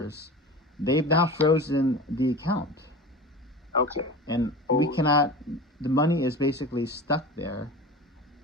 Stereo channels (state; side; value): normal; both; correlation 0.33